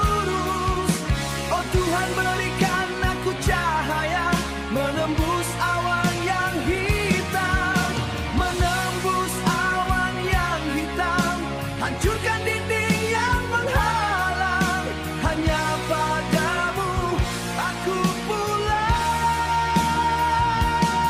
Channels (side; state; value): both; identical; correlation 1.00